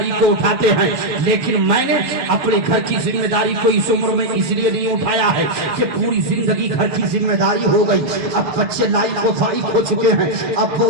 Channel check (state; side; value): late; left; 6.3 ms